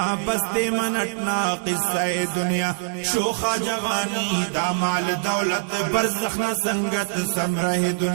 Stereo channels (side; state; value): left; silent; digital silence